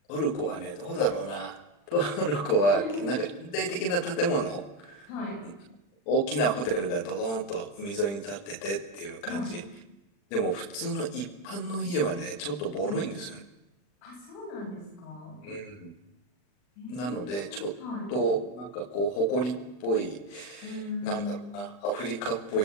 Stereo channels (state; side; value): late; right; 40 ms